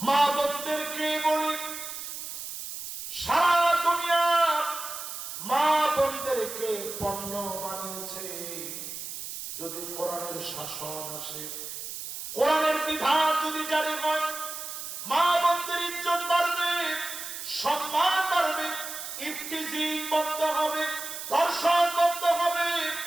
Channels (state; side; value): noise; right; hiss, 8 dB below the sound